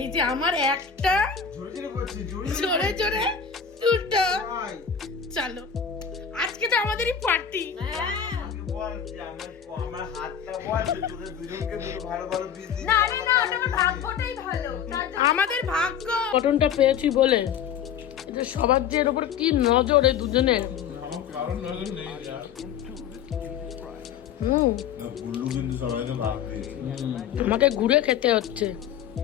যে আমার একটা জোরে জোরে করছি জোরে জোরে দুটো। ভাই চলো আজকে তো আমাদেরই পার্টি। আমাকে বল যে আমার হাতটা বল যে তোদের দুজনকে দুটো ভালো ভালো পিস দিই। না ওটা আমার ভাগ্যটাই ভালো তার জন্য আমাদের ভাগ্য কটনটা পেয়েছি বলে এটা সবার যে এর উপর কি নজর এই দুজনের। আমার কারণ নজর নেই যা গুল্লু কিন্তু সবাইকে ভাগ দিয়েছে আমাকে ঘুরে খেতে হচ্ছে।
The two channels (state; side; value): quieter; right; 7.9 dB